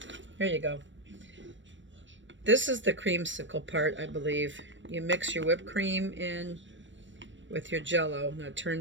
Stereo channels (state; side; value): late; left; 0.54 ms